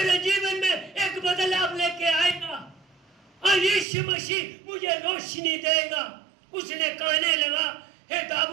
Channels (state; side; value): drops out; left; at 3.9 s